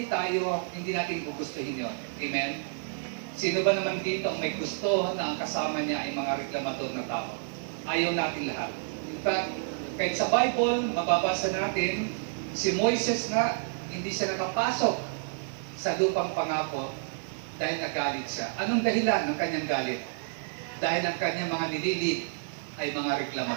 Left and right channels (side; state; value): left; silent; digital silence